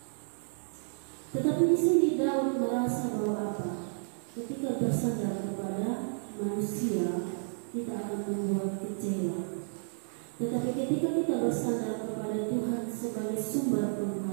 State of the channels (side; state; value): left; silent; digital silence